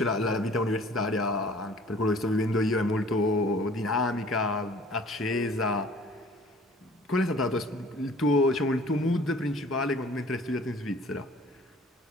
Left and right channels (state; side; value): normal; both; correlation 0.50